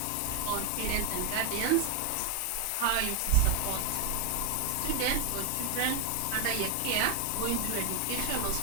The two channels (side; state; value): both; different; correlation 0.01